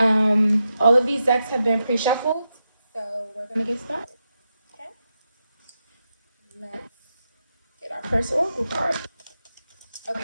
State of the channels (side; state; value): both; inverted; correlation -0.87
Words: all of these decks have been pre-shuffled, so we're gonna get started. Okay, let's get our first oracle card.